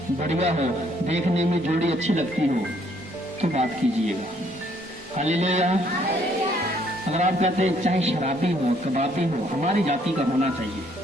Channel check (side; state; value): both; normal; correlation 0.66